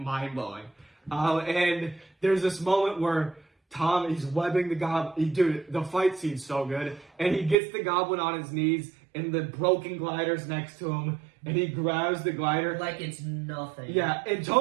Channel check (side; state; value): left; drops out; at 7.6 s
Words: blowing. And there's this moment where Tom, he's webbing the goblin. Dude, the fight scene's so good. And he gets the goblin on his knees, and the broken glider's next to him, and he grabs the glider. Like it's nothing. Yeah, and